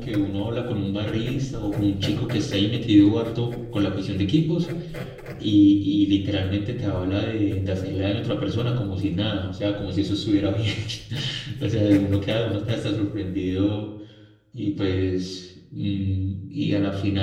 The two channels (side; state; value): both; identical; correlation 1.00